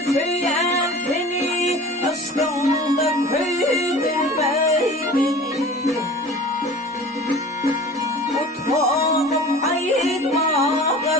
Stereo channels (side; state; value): both; normal; correlation 0.40